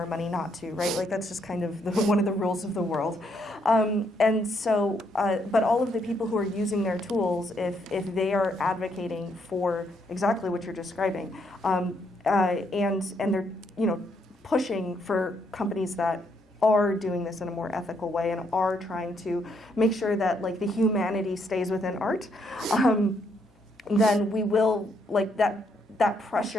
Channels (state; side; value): normal; both; correlation 0.74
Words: money not to, right? Like, that's just kind of one of the rules of the world. And so, but all of the people who are using their tools, if they are advocating for exactly what you're describing, and they're pushing for companies that are doing this in a more ethical way and are trying to make sure that, like, the humanity stays within art, then we will, like, that